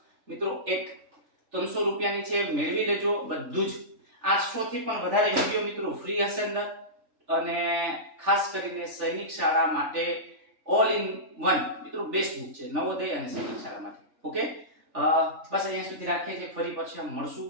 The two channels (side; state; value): left; late; 3.4 ms